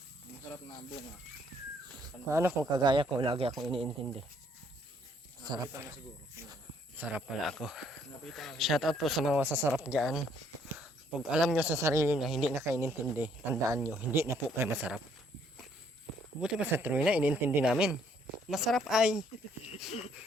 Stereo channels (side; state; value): both; normal; correlation 0.66